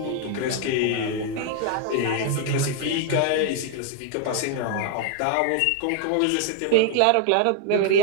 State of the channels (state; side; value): different; both; correlation 0.00